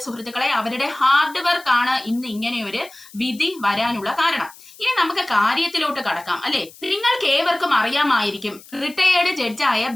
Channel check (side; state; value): left; noise; hiss, 21 dB below the sound